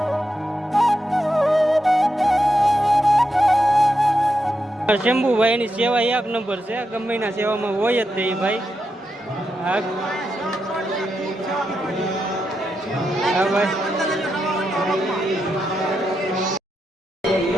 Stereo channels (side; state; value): both; normal; correlation 0.85